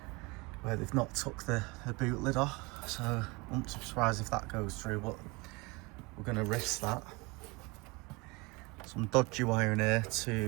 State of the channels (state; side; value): quieter; left; 26.2 dB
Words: where they've not took the boot lid off, so I won't be surprised if that goes through, but we're going to risk that. Some dodgy wiring here